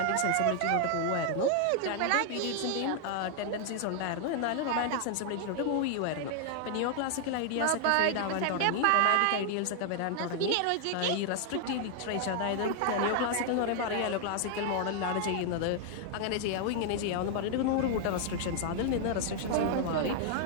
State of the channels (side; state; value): both; different; correlation 0.00